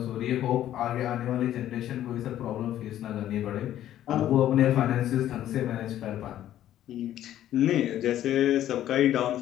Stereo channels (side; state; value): right; quieter; 12.2 dB